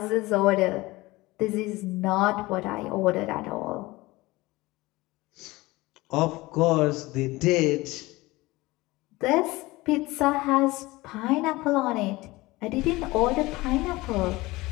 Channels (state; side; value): quieter; right; 20.6 dB